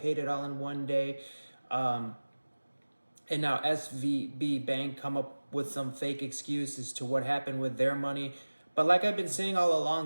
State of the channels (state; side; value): inverted; both; correlation -1.00